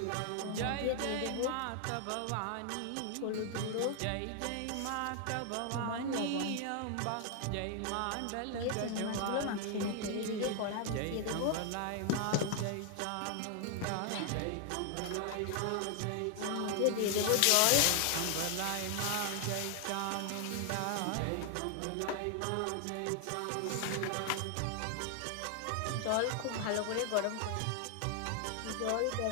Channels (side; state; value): both; different; correlation 0.00